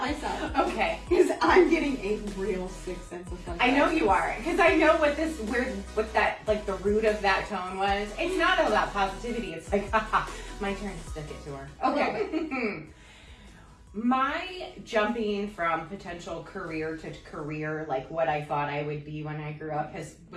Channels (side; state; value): both; identical; correlation 1.00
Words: Okay. Because I'm getting a real sick sense of fun. I know you are, because I know what that, like, the root of that tone was. It's not about positivity. It's like, haha, my turn to stick it to her. Okay. My jumping from potential career to career, like what I thought I would be when I grew up,